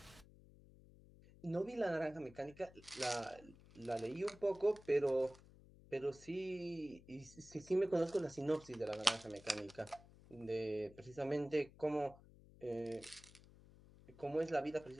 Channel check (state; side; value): noise; left; hum, 22 dB below the sound